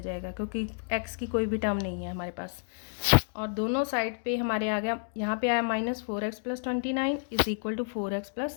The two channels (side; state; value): right; silent; digital silence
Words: जाएगा क्योंकि x की कोई भी टर्म नहीं है हमारे पास। और दोनों साइड पे हमारे आ गया, यहाँ पे आया -4x + 29 is equal to 4x